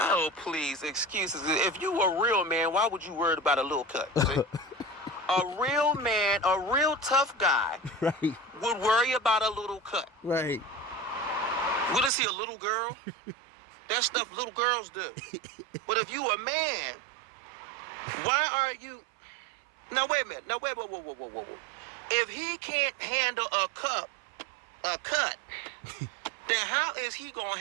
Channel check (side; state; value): left; drops out; at 12.1 s